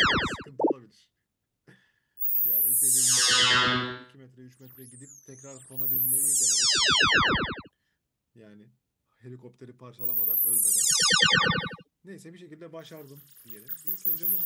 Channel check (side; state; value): both; identical; correlation 1.00